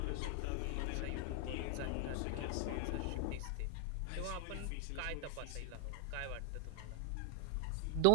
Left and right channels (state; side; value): different; both; correlation 0.00